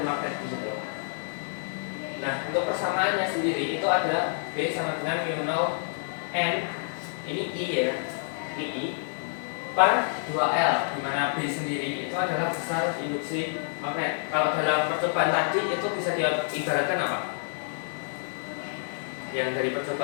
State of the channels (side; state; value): right; silent; digital silence